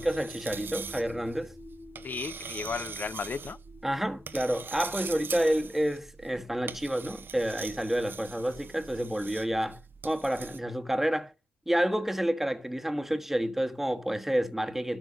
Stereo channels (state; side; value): normal; both; correlation 0.94